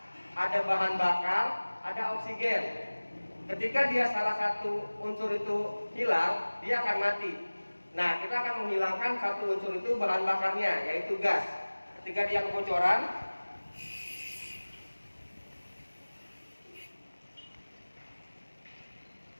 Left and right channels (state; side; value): inverted; both; correlation -1.00